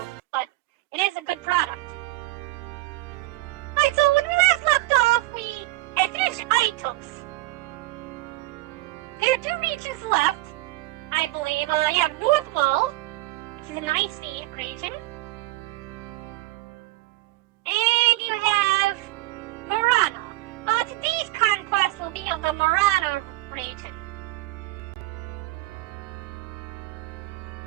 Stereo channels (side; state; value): left; quieter; 19.3 dB